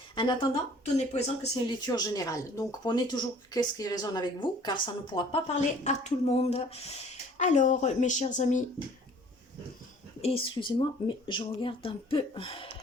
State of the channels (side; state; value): both; normal; correlation 0.53